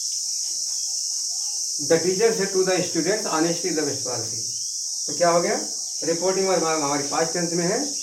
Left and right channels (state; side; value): identical; both; correlation 1.00